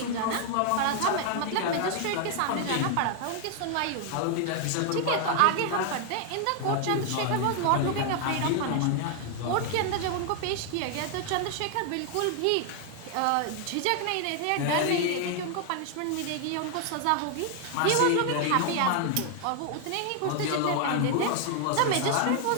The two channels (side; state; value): both; different; correlation 0.00